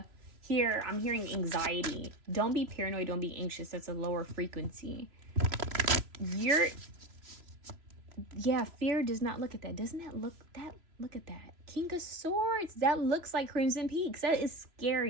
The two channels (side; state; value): left; late; 3.0 ms